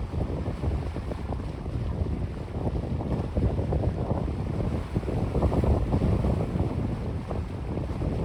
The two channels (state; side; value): identical; both; correlation 1.00